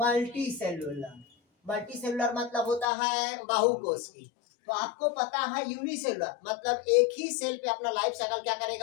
सेलुलर, मल्टी सेलुलर मतलब होता है बाहुकोष की। तो आपको पता है यूनिसेलुलर मतलब एक ही सेल पे अपना लाइफ साइकिल क्या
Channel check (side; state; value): right; drops out; at 2.9 s